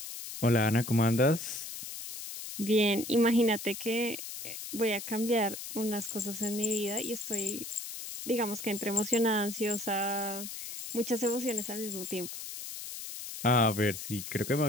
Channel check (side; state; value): left; noise; hiss, 9 dB below the sound